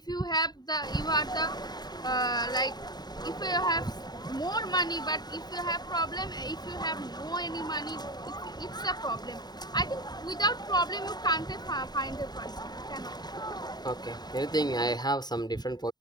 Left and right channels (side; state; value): right; late; 0.20 ms